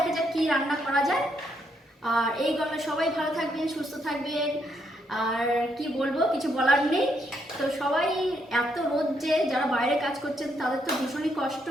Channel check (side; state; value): both; normal; correlation 0.76